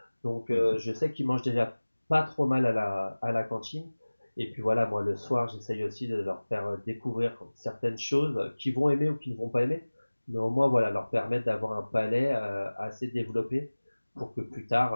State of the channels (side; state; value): both; inverted; correlation -1.00